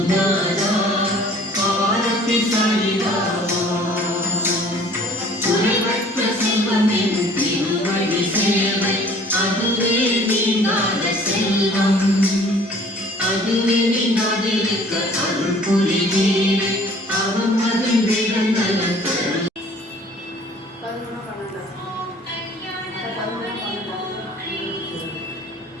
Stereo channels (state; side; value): normal; both; correlation 0.52